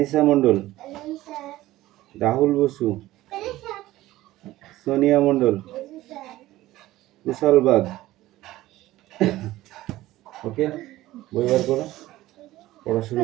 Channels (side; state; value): left; quieter; 16.3 dB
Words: মন্ডল, রাহুল বসু, সোনিয়া মন্ডল, কুশল বাগ। ওকে, বই বার করো, পড়া